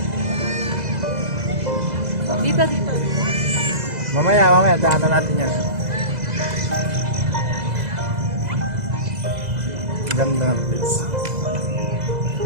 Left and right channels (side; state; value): left; late; 2.0 ms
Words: Dito, dito. Mamaya, daanan natin yan. Ganda ng place.